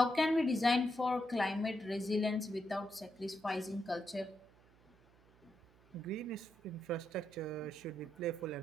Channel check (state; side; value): noise; right; hum, 28 dB below the sound